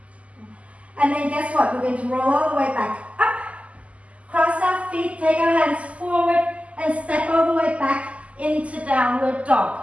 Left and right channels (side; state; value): left; late; 0.065 ms